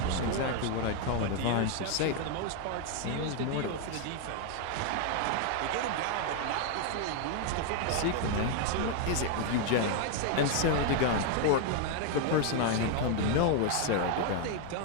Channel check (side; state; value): both; different; correlation 0.00